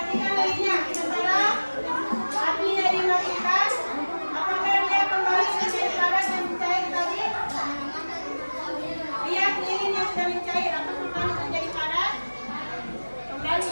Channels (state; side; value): inverted; both; correlation -1.00